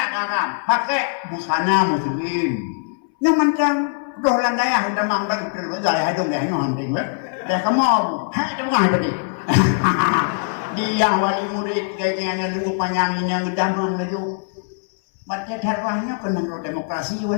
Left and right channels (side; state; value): right; silent; 65 dB below the other